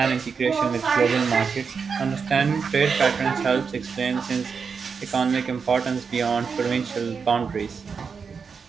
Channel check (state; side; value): quieter; left; 5.7 dB